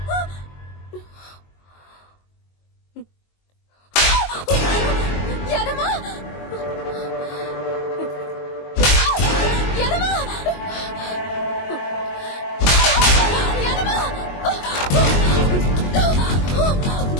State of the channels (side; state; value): right; late; 22 ms